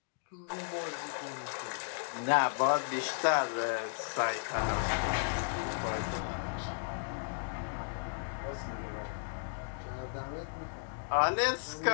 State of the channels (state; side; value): silent; right; digital silence